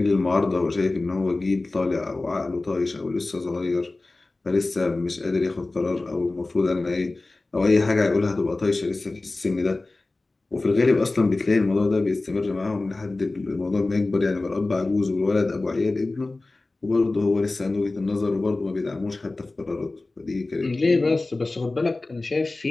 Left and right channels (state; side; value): quieter; right; 3.2 dB